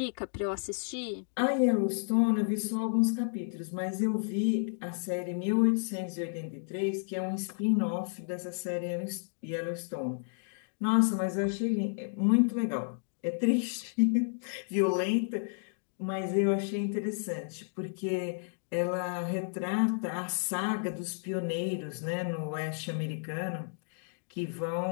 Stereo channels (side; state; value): right; silent; digital silence